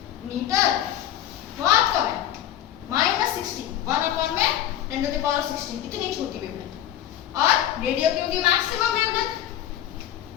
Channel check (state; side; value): quieter; right; 11.5 dB